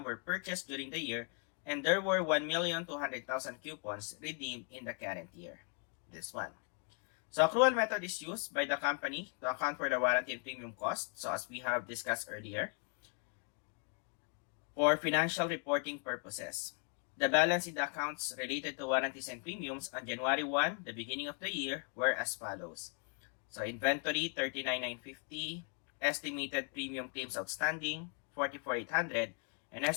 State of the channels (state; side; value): quieter; right; 39.1 dB